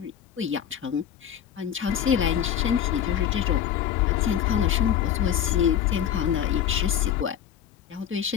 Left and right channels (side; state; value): right; quieter; 9.7 dB